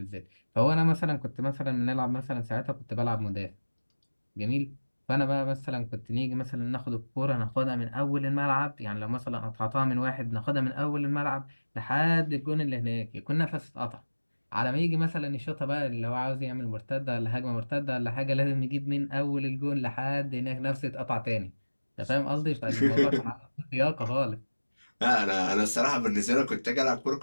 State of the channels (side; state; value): both; inverted; correlation -1.00